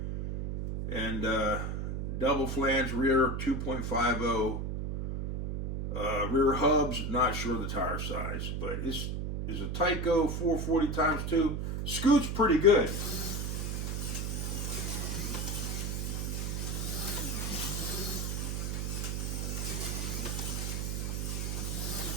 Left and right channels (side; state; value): right; noise; hum, 2 dB below the sound